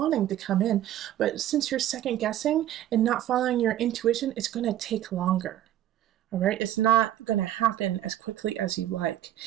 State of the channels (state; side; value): quieter; left; 12.3 dB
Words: to come in, but since you're second guessing and not following your intuition, it's going to take longer. All right, it's not going to happen as quickly as you like.